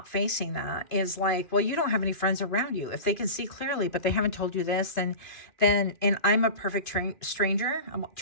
facing that is like, well, you don't have any friends around you. If they can see clearly, but they haven't told you this, and I'm a perfect stranger. I'm a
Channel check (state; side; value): late; right; 2.5 ms